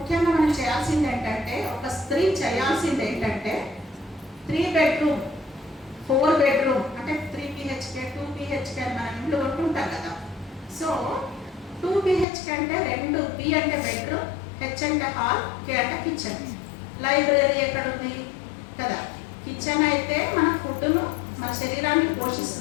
మనం చేయాల్సింది ఏంటంటే, ఒక స్త్రీ చేయాల్సింది ఏంటంటే 3 bedroom 4 bedroom అంటే 3 BHK 2 BHK అని మనం ఇంట్లో ఉంటుంటాం కదా. సో 2 BHK అంటే 2 B అంటే బెడ్రూమ్, H అంటే హాల్, K అంటే కిచెన్. లైబ్రరీ ఎక్కడ ఉంది కదా. కిచెన్ అయితే మన ఫుడ్ను, మన శరీరాన్ని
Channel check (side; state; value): right; drops out; at 12.2 s